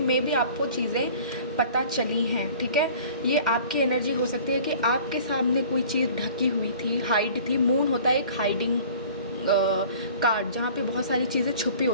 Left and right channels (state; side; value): inverted; both; correlation -0.46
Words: मे बी आपको चीज़ें पता चली हैं. ठीक है, ये आपकी एनर्जी हो सकती है कि आपके सामने कोई चीज़ ढकी हुई थी, हाइड थी. मून होता है एक हाइडिंग कार्ड जहाँ पे बहुत सारी चीज़ें छुपी